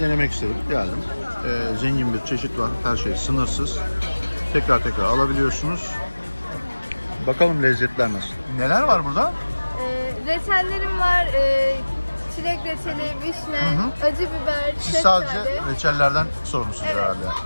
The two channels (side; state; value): both; inverted; correlation -1.00